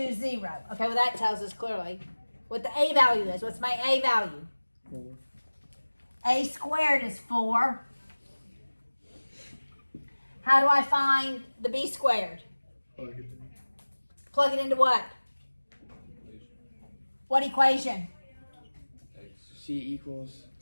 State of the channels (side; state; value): both; inverted; correlation -1.00